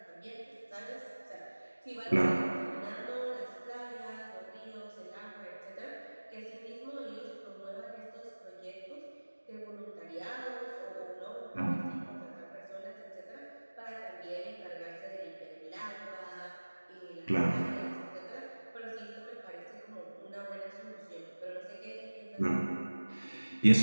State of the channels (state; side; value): inverted; both; correlation -1.00